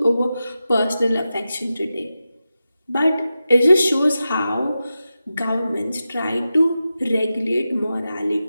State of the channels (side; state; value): both; inverted; correlation -0.92